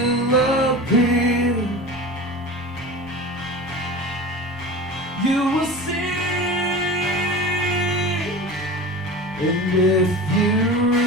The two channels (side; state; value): both; normal; correlation 0.32